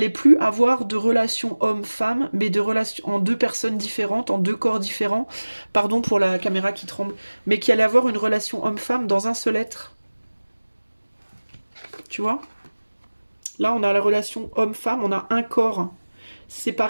plus avoir de relations homme-femme, mais de relations en deux personnes différentes, en deux corps différents, pardon pour la caméra qui tremble, mais qu'il allait avoir une relation homme-femme dans un seul être. Tu vois? Là, on a la relation homme-femme, on a un corps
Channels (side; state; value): both; inverted; correlation -1.00